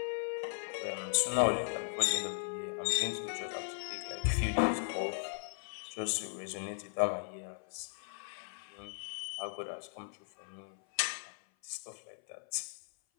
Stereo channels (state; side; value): silent; right; 53 dB below the other